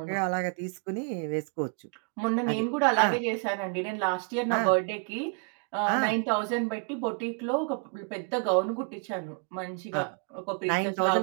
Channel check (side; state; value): left; quieter; 36.6 dB